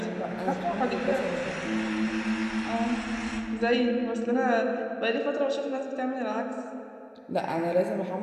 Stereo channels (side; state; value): both; identical; correlation 1.00